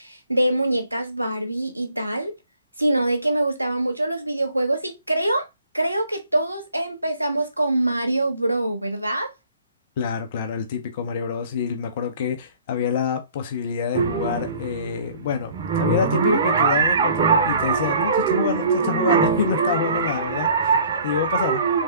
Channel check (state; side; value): inverted; both; correlation -0.55